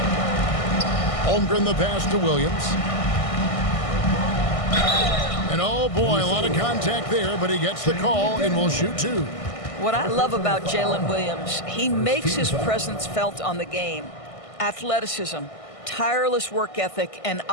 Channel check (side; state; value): right; late; 1.6 ms